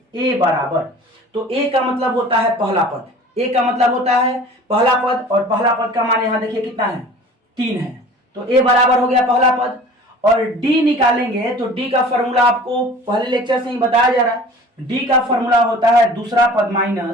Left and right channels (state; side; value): normal; both; correlation 0.44